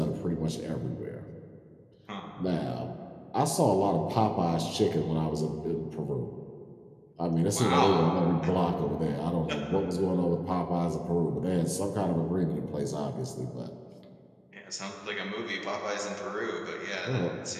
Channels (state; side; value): identical; both; correlation 1.00